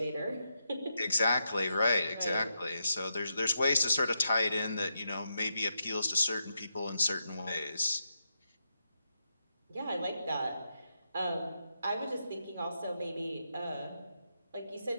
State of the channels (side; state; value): both; inverted; correlation -0.84